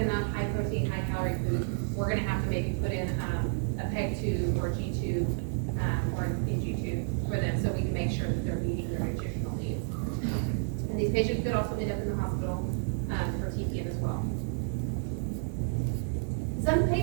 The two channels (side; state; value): left; silent; digital silence